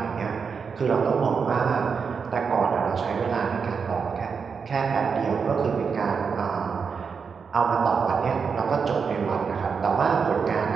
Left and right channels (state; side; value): quieter; left; 5.8 dB